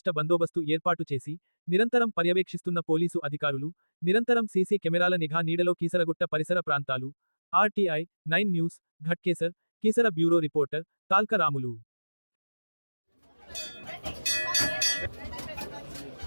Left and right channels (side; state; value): both; inverted; correlation -1.00